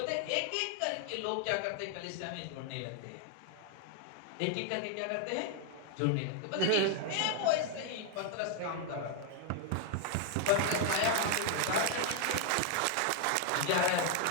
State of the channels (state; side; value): different; both; correlation 0.00